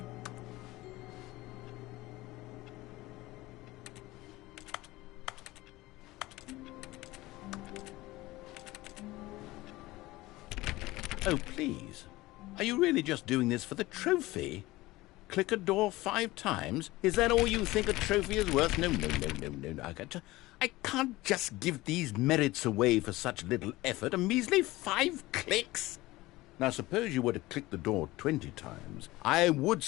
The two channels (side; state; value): right; quieter; 19.1 dB